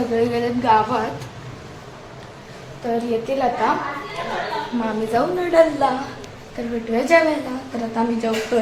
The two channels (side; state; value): both; identical; correlation 1.00